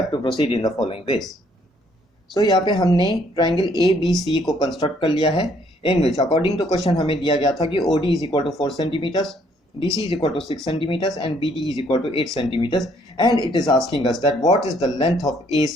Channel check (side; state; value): both; normal; correlation 0.65